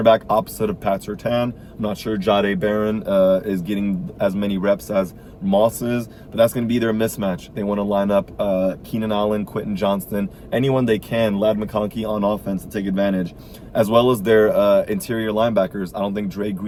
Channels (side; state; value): both; identical; correlation 1.00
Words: opposite of Pat Surtain. I'm not sure Jahdae Barron is getting as many reps as Moss is, but that's going to be their mismatch. They want to line up Keenan Allen, Quentin Johnston, anyone they can, Ladd McConkey on offense to take advantage, as well as their interior linebackers. I don't think Dre